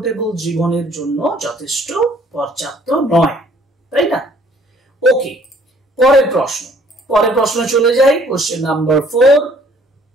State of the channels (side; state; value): both; normal; correlation 0.59